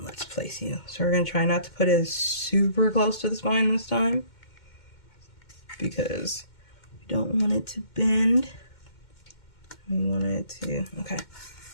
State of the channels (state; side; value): late; right; 2.2 ms